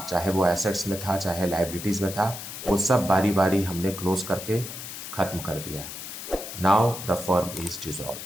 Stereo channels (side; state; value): left; noise; hiss, 9 dB below the sound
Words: चाहे वो एसेट्स में था चाहे लाइबिलिटीज़ में था, वो सब बारी बारी हमने क्लोज करके ख़त्म कर दिया. Now the firm is dissolve.